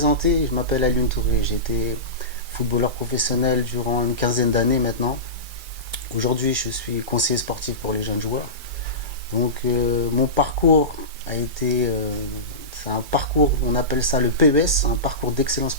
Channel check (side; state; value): left; late; 2.3 ms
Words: je m'appelle Alioune Touré. J'ai été footballeur professionnel durant une quinzaine d'années maintenant. Aujourd'hui, je suis conseiller sportif pour les jeunes joueurs. Donc, mon parcours a été, c'est un parcours, on appelle ça le PES, un parcours d'excellence